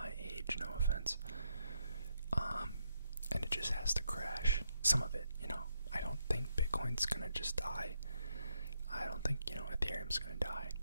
age, no offense. And it just has to crash. Some of it, I don't think Bitcoin's gonna just die. I don't think, Ethereum's gonna die.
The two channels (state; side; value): inverted; both; correlation -0.77